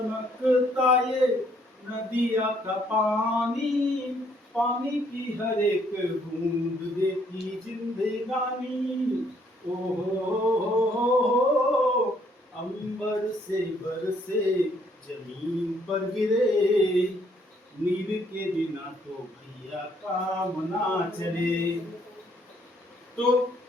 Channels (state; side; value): normal; both; correlation 0.67